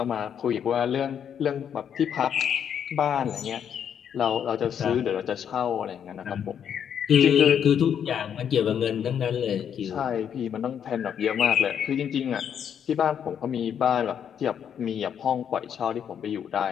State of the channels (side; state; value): right; quieter; 8.5 dB